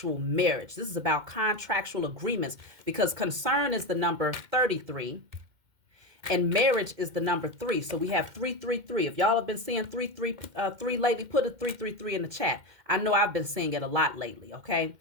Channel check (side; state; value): left; late; 2.1 ms